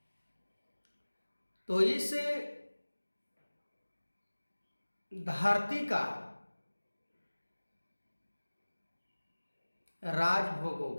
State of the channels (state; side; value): inverted; both; correlation -1.00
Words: तो इस धरती का राज